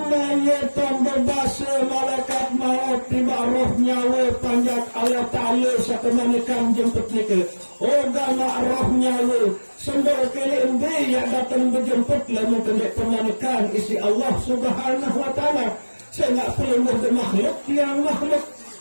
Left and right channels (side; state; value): both; inverted; correlation -1.00